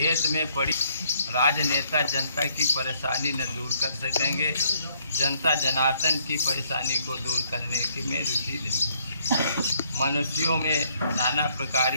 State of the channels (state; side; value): inverted; both; correlation -0.68